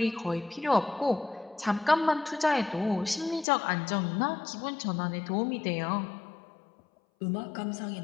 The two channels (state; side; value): drops out; right; at 3.5 s